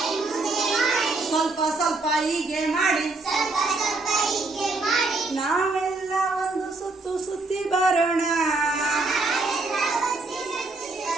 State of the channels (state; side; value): quieter; left; 3.4 dB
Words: ಸ್ವಲ್ಪ ಸ್ವಲ್ಪ ಹೀಗೆ ಮಾಡಿ, ನಾವೆಲ್ಲ ಒಂದು ಸುತ್ತು ಸುತ್ತಿ ಬರೋಣ.